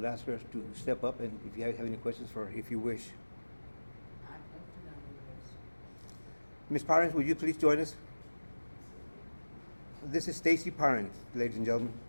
ask her to step up, and if you have any questions for her, if you wish. Ms. Parent, would you please join us? This is Stacy Parent, ladies and gentlemen.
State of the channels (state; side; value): inverted; both; correlation -1.00